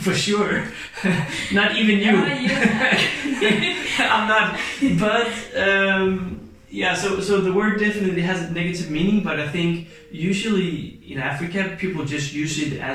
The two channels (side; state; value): both; identical; correlation 1.00